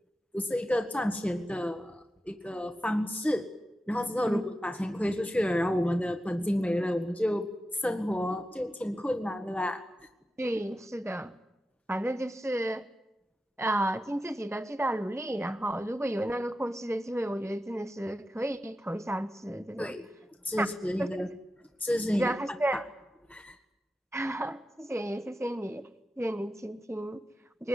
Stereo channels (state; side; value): normal; both; correlation 0.91